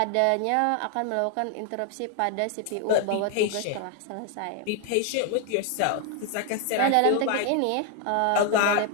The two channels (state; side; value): different; both; correlation 0.00